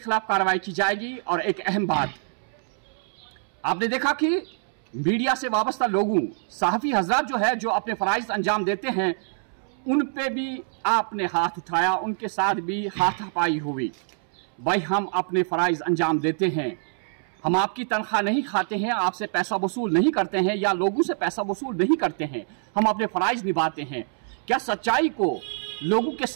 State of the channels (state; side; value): silent; left; 62 dB below the other